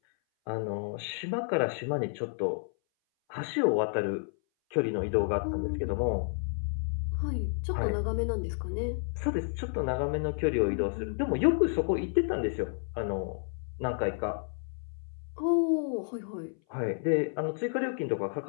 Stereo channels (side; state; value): right; silent; 57 dB below the other